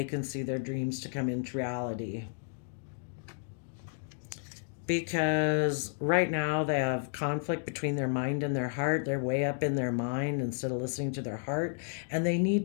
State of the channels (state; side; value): silent; right; digital silence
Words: can see their dreams to come into reality. Because right now they have conflict between their mind and their heart. They're way up in their mind instead of listening to their heart. And they